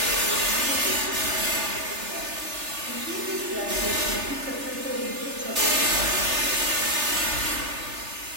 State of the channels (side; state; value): left; late; 3.4 ms